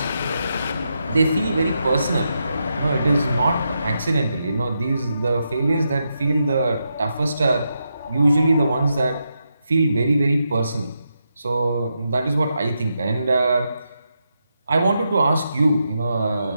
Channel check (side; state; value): both; inverted; correlation -0.84